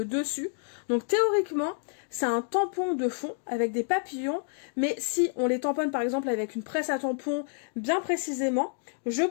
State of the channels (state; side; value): silent; right; 59 dB below the other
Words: dessus. Donc théoriquement, c'est un tampon de fond avec des papillons, mais si on les tamponne par exemple avec une presse à tampon bien précisément, je